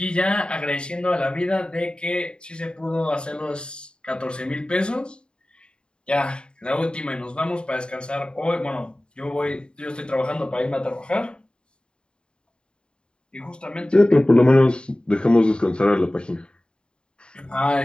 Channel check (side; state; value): right; late; 0.051 ms